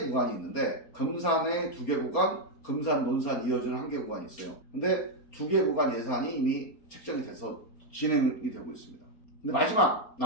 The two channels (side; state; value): right; late; 4.3 ms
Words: 구간이 있는데, 금산에 2개 구간, 금산, 논산 이어지는 1개 구간이 있어요. 근데 2개 구간 예산이 이미 책정이 돼서 진행이 되고 있습니다. 근데 마지막